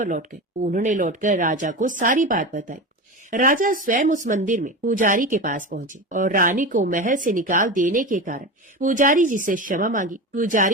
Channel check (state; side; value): normal; both; correlation 0.24